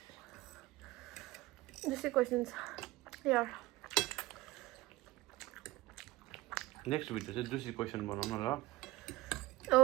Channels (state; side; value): quieter; left; 18.8 dB